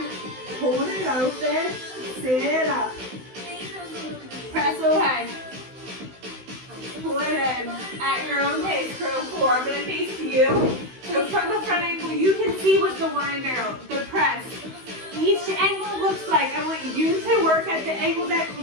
Hold it open. Sit up. Press away. Pull it in at your own pace, crew. 4. I'm going to face you. So from the front angle, you can see what the wine barrel, the press, each angle looks like. I want you to work at the angle that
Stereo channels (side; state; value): left; late; 16 ms